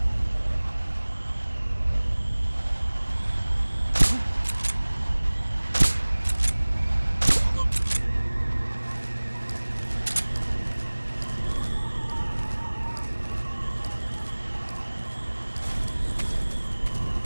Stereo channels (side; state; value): both; inverted; correlation -1.00